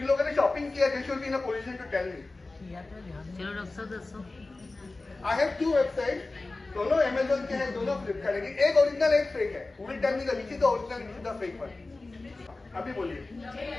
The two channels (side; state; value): right; quieter; 3.3 dB